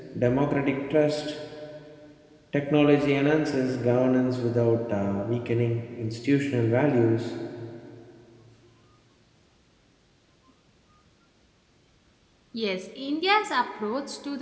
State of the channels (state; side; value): identical; both; correlation 1.00